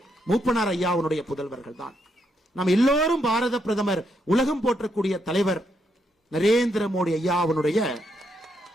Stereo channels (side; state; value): both; normal; correlation 0.78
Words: மூப்பனார் ஐயாவுடைய புதல்வர்கள் தான். நாம் எல்லோரும் பாரத பிரதமர், உலகம் போற்றக்கூடிய தலைவர் நரேந்திர மோடி ஐயாவுடைய